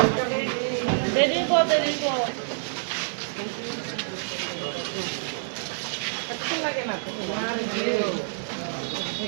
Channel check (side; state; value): left; silent; digital silence